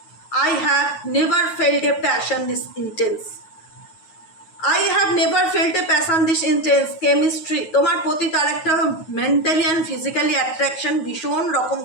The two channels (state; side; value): late; right; 9.3 ms